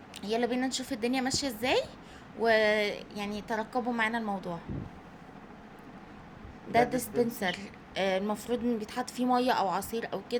يلا بينا نشوف الدنيا ماشية ازاي، ويعني ترقبوا معانا الموضوع. ده ده ديسبنسر. ديسبنسر. المفروض ان بيتحط فيه مية او عصير او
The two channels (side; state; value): both; identical; correlation 1.00